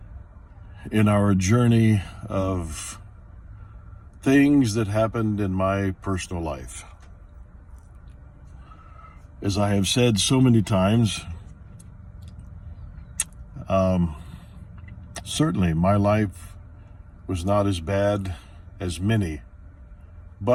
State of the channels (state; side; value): identical; both; correlation 1.00